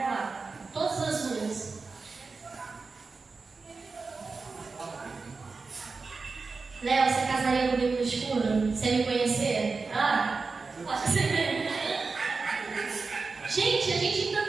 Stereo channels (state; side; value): quieter; left; 4.3 dB